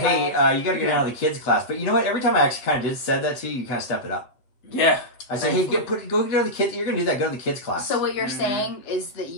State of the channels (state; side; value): late; right; 7.9 ms